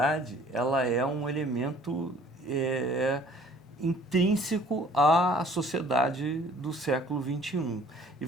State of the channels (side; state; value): both; normal; correlation 0.54